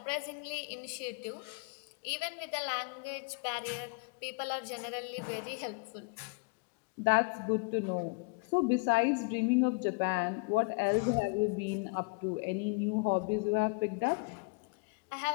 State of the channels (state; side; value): quieter; right; 32.0 dB